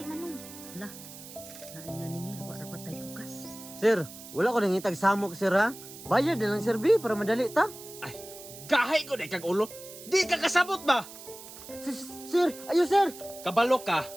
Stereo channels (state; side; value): noise; right; hiss, 15 dB below the sound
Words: manong. Hala, naay naningil, wa rapat tay bugas. Sir, wala ko nang itag samok, sir, ha? Bayad na lang, sir, B, para madali ta. Gahay ko na kag ulo. Di ka kasabot ba? Sir, ayo, sir. Kabalo ka.